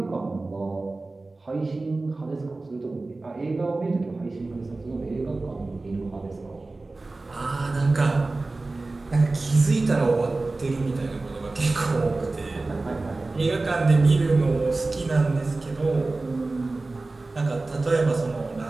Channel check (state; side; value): quieter; left; 3.3 dB